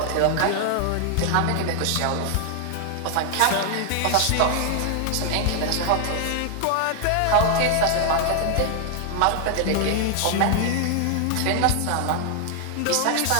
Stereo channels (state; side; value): different; both; correlation 0.00